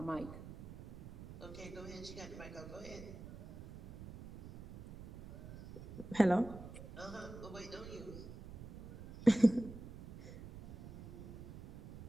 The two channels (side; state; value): right; noise; rumble, 13 dB below the sound